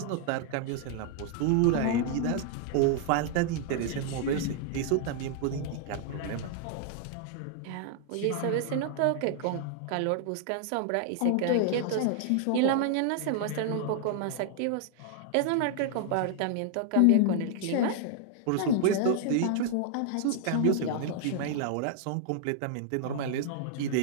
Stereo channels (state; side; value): different; both; correlation -0.01